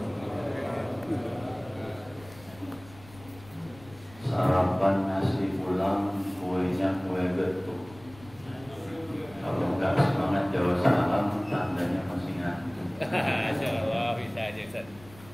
Sarapan nasi pulang, kuenya kue getuk. Kalau nggak semangat jawab salam, tandanya masih ngantuk. Insyaallah bisa aja Ustaz.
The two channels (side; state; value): left; noise; rumble, 21 dB below the sound